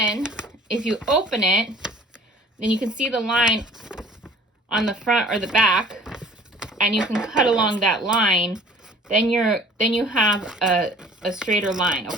if you open it, then you can see the line on the front or the back, and you can cut along that line. Then you have a straighter line,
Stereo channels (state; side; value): normal; both; correlation 0.50